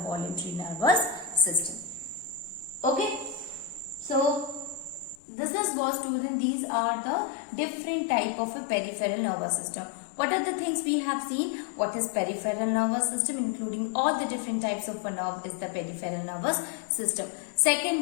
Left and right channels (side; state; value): right; drops out; at 5.2 s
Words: nervous system. Okay, so this is what, student, these are the different type of a peripheral nervous system. What are the things we have seen? What is peripheral nervous system? Including all the different types of a nerve is the peripheral nervous system.